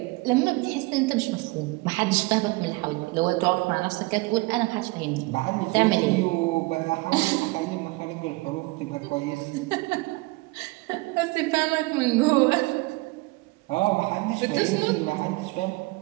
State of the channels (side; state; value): left; quieter; 24.0 dB